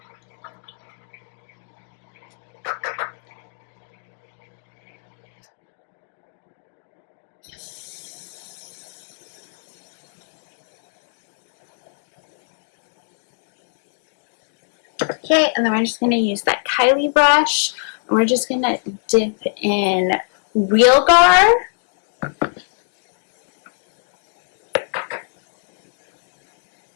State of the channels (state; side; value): silent; right; digital silence